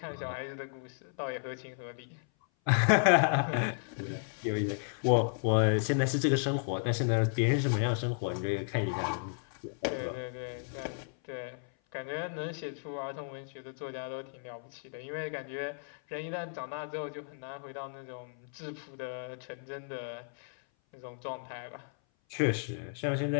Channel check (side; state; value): right; silent; 55 dB below the other